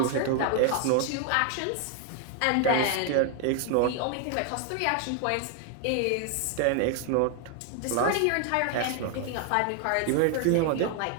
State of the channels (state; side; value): different; both; correlation 0.00